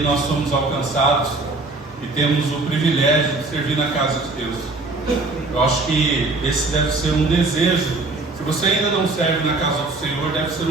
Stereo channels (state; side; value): quieter; left; 3.3 dB